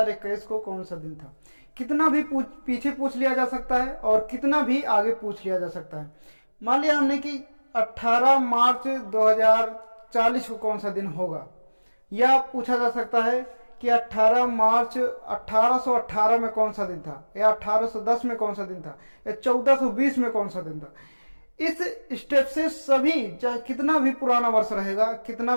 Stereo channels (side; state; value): both; inverted; correlation -1.00